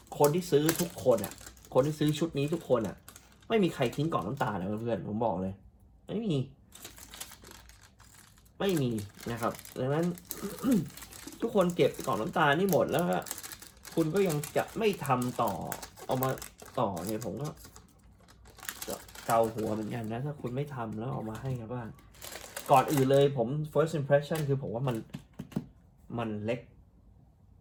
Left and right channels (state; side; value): identical; both; correlation 1.00